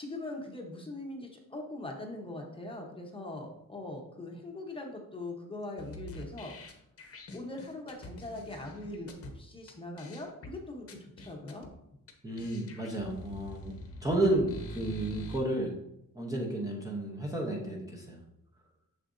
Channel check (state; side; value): normal; both; correlation 0.54